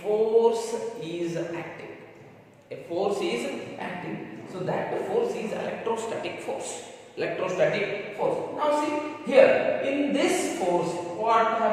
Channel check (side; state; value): both; identical; correlation 1.00